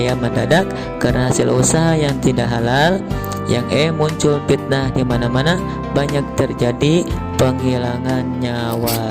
mendadak karena hasil usaha yang tidak halal. Yang muncul fitnah di mana-mana, banyak terjadi penghilangan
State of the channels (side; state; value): both; identical; correlation 1.00